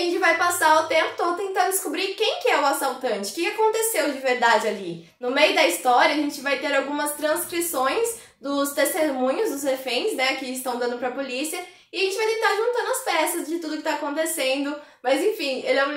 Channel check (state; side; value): identical; both; correlation 1.00